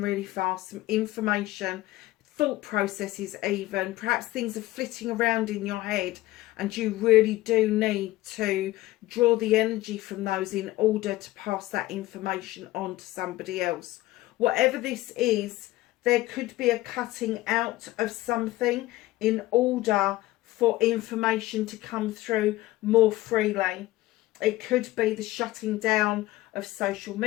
fast. Some information, thought processes even. Perhaps things are flitting around in your head and you really do need to draw the energy from those in order to pass that information on to somebody else. Whatever this is, there could be a cutting out of something in order for information to come through more freely. It could be the shutting down of social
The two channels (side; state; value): right; quieter; 17.4 dB